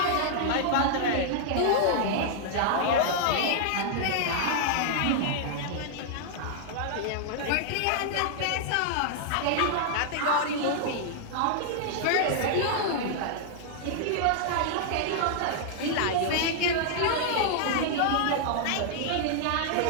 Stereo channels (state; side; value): different; both; correlation -0.01